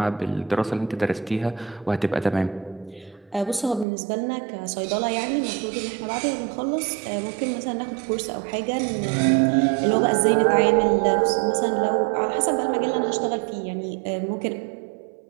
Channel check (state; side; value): drops out; left; at 3.9 s